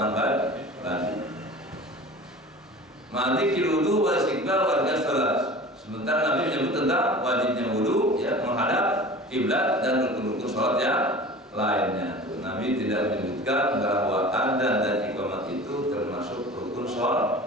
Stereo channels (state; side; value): normal; both; correlation 0.39